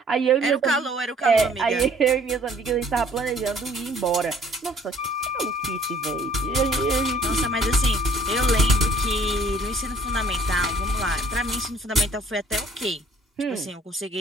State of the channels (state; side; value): normal; both; correlation 0.56